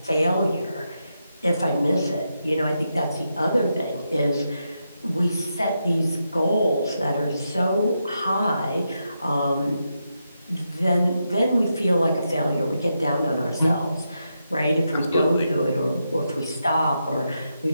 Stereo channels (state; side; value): inverted; both; correlation -0.84